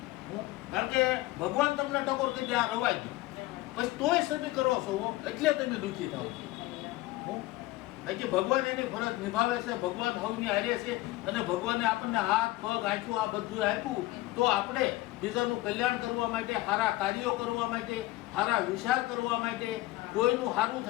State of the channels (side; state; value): right; quieter; 18.4 dB